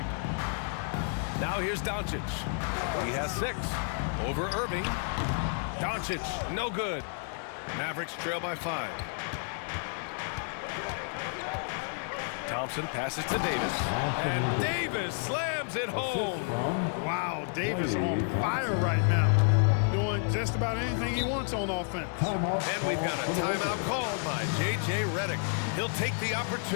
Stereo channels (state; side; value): silent; right; 57 dB below the other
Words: Now here's Doncic. He has 6. Over Irving. Doncic, no good. Mavericks trail by 5. Thompson passes to Davis. And Davis slams it home. Wow, Davis on fire right now. Doing just about anything he wants on offense. And we've got a timeout called by J.J. Redick. He'll take the